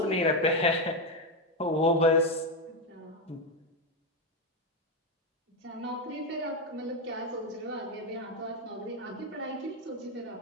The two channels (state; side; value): normal; both; correlation 0.08